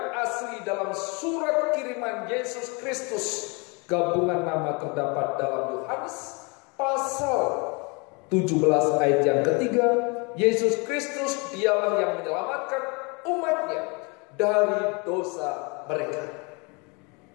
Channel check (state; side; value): quieter; right; 30.7 dB